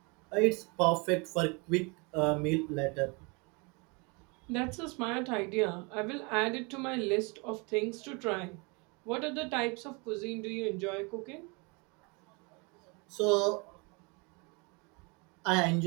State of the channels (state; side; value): quieter; left; 30.1 dB